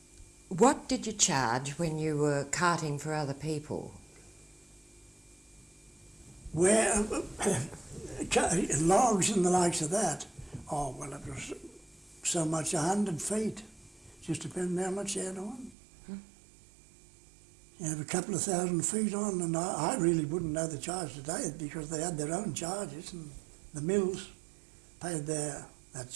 What did you charge when you were carting for other people? Where logs and the likes of that, oh, well, it was so much 100 feet. Just depending how much you had on. You have a couple of 1,000 feet on, and I really wouldn't know the charge today because they had their own charges, and the mills paid that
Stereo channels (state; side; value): drops out; left; at 15.8 s